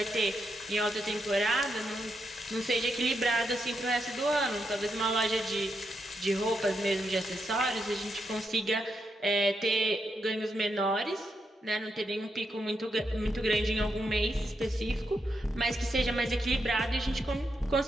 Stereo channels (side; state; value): both; normal; correlation 0.82